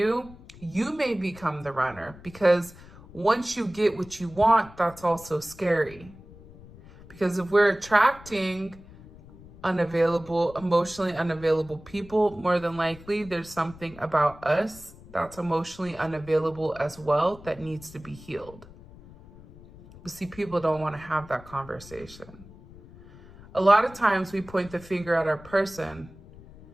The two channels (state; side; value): noise; left; rumble, 20 dB below the sound